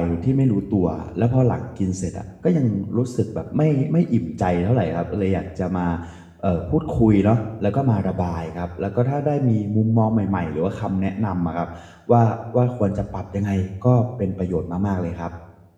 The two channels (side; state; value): both; identical; correlation 1.00